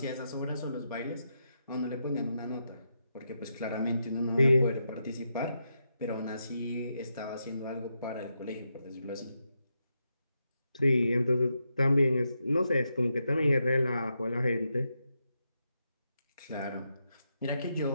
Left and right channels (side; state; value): both; inverted; correlation -0.84